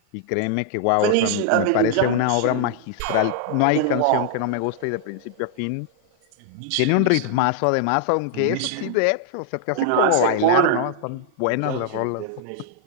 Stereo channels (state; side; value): different; both; correlation 0.00